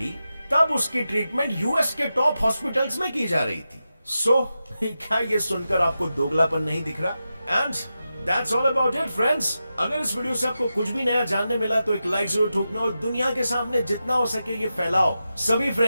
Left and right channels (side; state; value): both; inverted; correlation -0.91